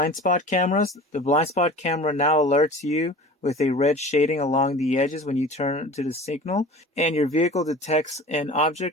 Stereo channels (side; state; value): both; normal; correlation 0.40